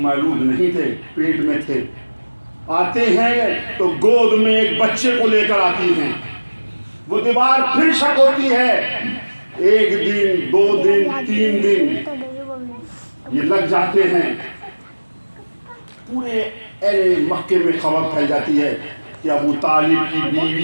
نہیں تھے، پیٹ میں تھے، آتے ہیں تو گود میں ایک بچے کو لے کر آتی ہیں، وہ دیوار پھر شق ہوتی ہے، 1 دن 2 دن 3 دن یہ لگ جاتے ہیں، پورے اہل مکے میں خبر پھیل جاتی ہے کہ ابو طالب کی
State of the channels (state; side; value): inverted; both; correlation -1.00